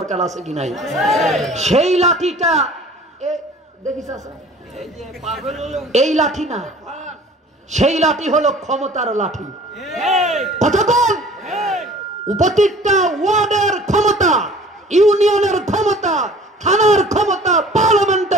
আছে কি নাই? সেই লাঠিটা দেখিস, এই লাঠি না, সেই লাঠি হলো ক্ষমতার লাঠি। কতক্ষণ উপত্যকা ওয়ার্ডের ক্ষমতা, ইউনিয়নের ক্ষমতা, থানার ক্ষমতা,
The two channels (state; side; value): normal; both; correlation 0.48